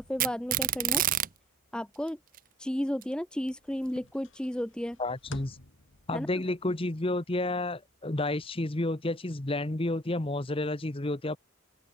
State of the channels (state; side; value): normal; both; correlation 0.57